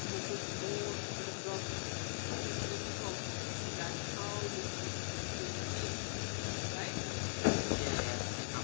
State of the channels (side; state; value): right; silent; digital silence